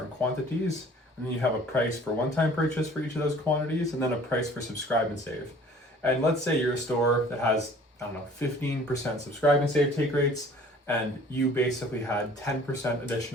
quantities, and then you have a price for one-time purchase for each of those quantities, and then a price for subscribe and save. And let's say you're a store that has, 15% subscribe and save take rates, and you basically had 10%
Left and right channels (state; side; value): normal; both; correlation 0.51